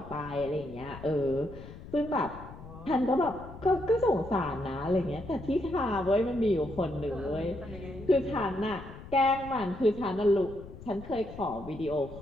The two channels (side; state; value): left; noise; rumble, 15 dB below the sound